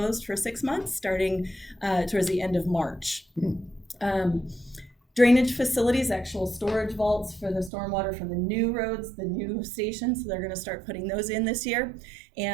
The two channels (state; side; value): drops out; left; at 7.7 s